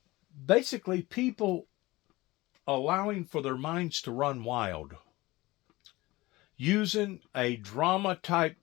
basically people allowing for their minds to run wild, using a drama-type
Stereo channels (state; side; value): quieter; right; 20.2 dB